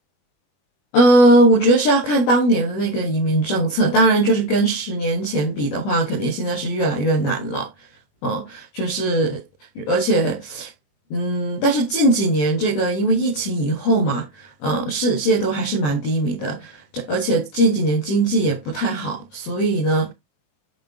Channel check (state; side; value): late; right; 21 ms